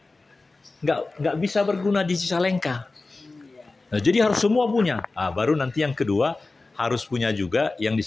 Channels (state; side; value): quieter; right; 3.4 dB